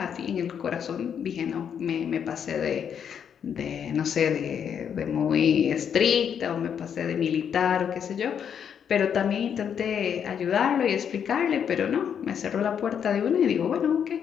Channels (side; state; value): right; quieter; 8.0 dB